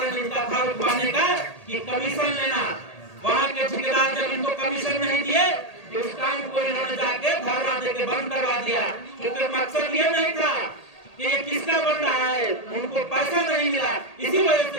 इनका था रुकवाने का कि कमीशन लेना। वहाँ के ठेकेदार जब इनको कमीशन नहीं दिए, तो उस काम को इन्होंने जाके धरना देके बंद करवा दिया, क्योंकि मकसद ये नहीं था कि ये किसका बन रहा है, उनको पैसा नहीं मिला, इसी वजह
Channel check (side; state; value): right; late; 1.8 ms